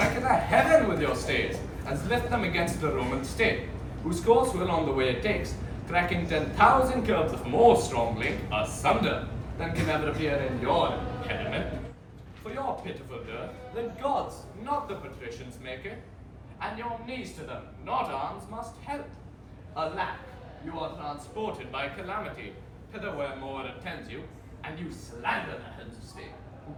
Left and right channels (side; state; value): both; identical; correlation 1.00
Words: in the heaven with your stays, as lift them against the Roman state, whose course will on the way it takes, cracking 10,000 curbs of more strong link asunder than can ever appear in your impediment. For your pitiful dirt, the gods, not the patricians, make it, and your knees to them, not arms, must help. Alack, you are transported by calamity, hither where more attends you, and you slander the heads of state, who